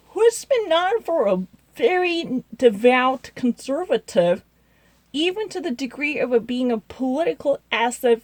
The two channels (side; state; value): both; identical; correlation 1.00